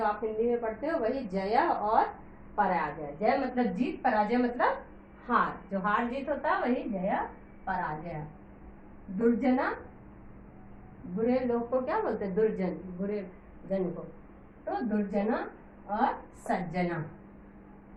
आप हिंदी में पढ़ते हो वही जय और पराजय। जय मतलब जीत, पराजय मतलब हार। जो हार जीत होता है वही जय पराजय। दुर्जना, बुरे लोग को क्या बोलते हैं? दुर्जन, बुरे जन को। तो दुर्जना और सज्जना।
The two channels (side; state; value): both; identical; correlation 1.00